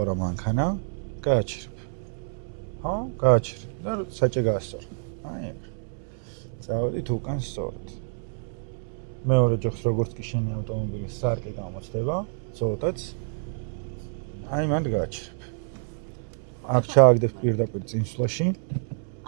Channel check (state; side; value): silent; left; 60 dB below the other